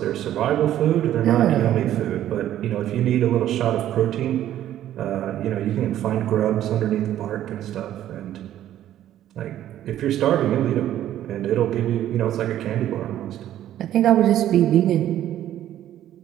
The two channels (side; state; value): left; quieter; 12.1 dB